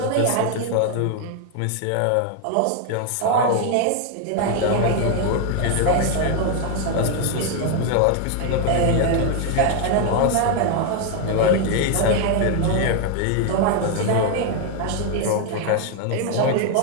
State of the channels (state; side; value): different; both; correlation 0.01